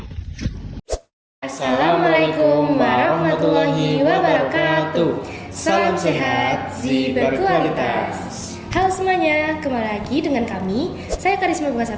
Assalamualaikum warahmatullahi wabarakatuh. Salam sehat, gizi berkualitas. Halo semuanya, kembali lagi dengan kami. Saya Karisma Bunga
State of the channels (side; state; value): both; identical; correlation 1.00